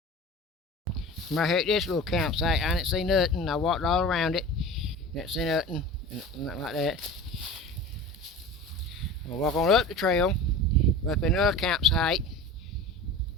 I'm right here at this little campsite. I didn't see nothing. I walked all around it. Didn't see nothing. Nothing like that. I'm gonna walk on up the trail. Up in another campsite.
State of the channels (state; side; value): normal; both; correlation 0.35